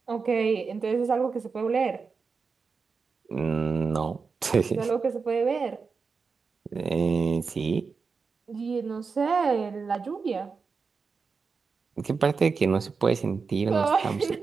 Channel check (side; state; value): left; quieter; 5.0 dB